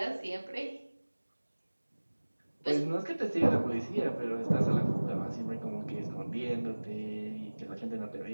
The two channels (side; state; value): both; inverted; correlation -1.00